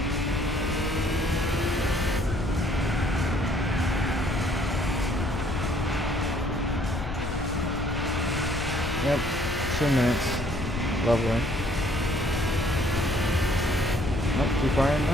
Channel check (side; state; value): left; noise; rumble, 6 dB below the sound